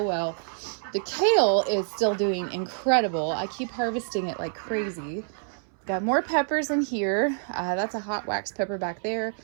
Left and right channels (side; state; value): left; silent; 60 dB below the other